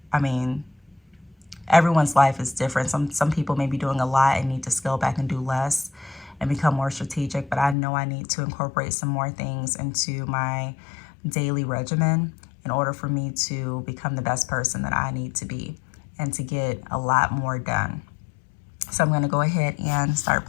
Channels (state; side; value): drops out; right; at 7.8 s